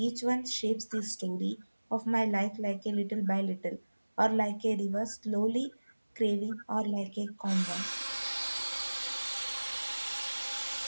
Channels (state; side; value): inverted; both; correlation -1.00